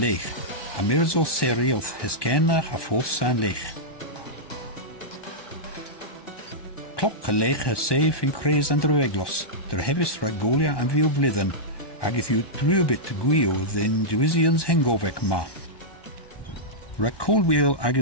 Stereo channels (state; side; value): late; right; 1.2 ms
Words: a mirzo seri oth heskenna a foth san lech. Cloc a lech a safe in craze and drueglos, der hevis ragolia an viu vlidden, ag if you drubit gwio then Duisians hengofec ma. Racolwheel